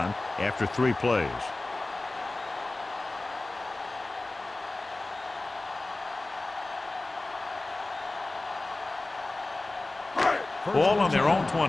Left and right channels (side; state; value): right; quieter; 3.0 dB